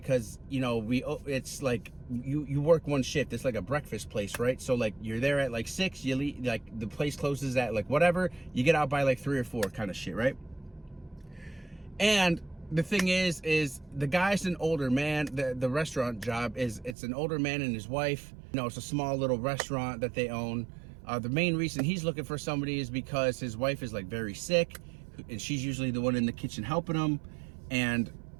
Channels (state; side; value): drops out; left; at 16.9 s